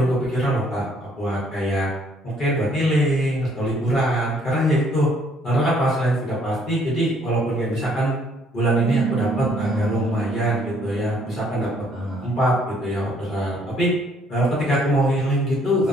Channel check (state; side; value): normal; both; correlation 0.64